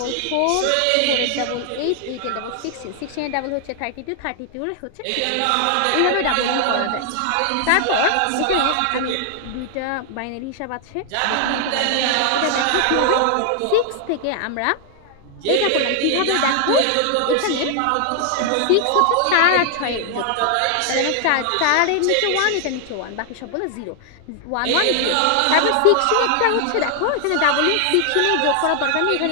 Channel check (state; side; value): different; both; correlation 0.00